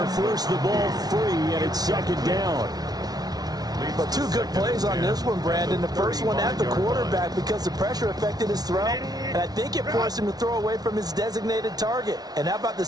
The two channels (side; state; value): left; late; 0.19 ms